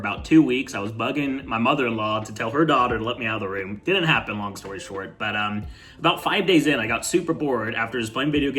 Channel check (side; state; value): both; identical; correlation 1.00